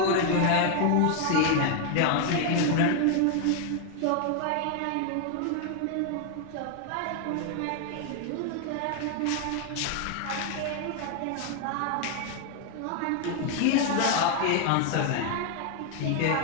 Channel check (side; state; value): both; different; correlation 0.00